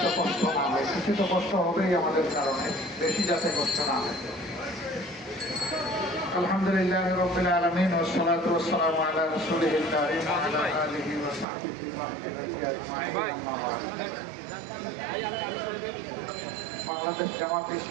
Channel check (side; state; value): left; drops out; at 11.5 s